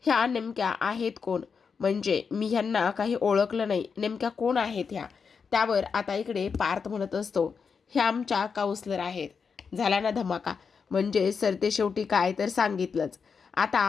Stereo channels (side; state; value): right; quieter; 5.8 dB